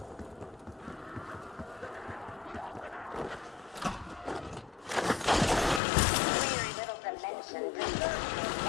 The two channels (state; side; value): drops out; right; at 5.8 s